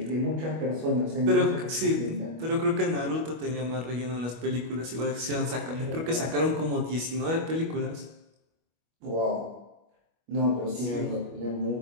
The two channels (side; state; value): left; late; 25 ms